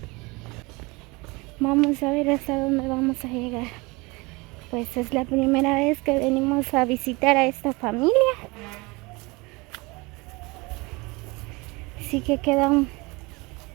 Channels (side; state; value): left; quieter; 25.2 dB